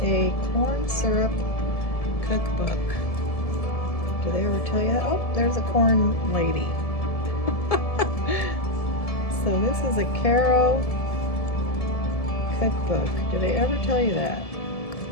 a corn syrup cookbook. Do they ever tell you? Oh, there's a corn lady. So this is a Caro cookbook. Do they ever tell you that?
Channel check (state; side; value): late; right; 1.7 ms